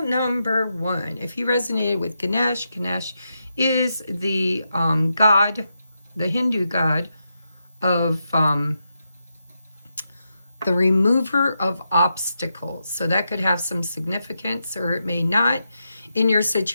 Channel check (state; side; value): inverted; both; correlation -0.86